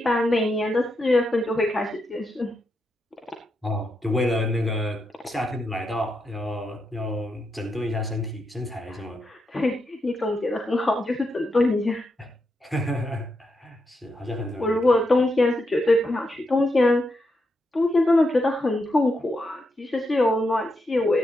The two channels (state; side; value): normal; both; correlation 0.84